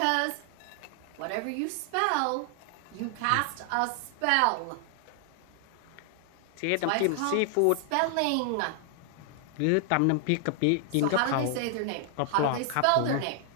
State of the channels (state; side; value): different; both; correlation 0.00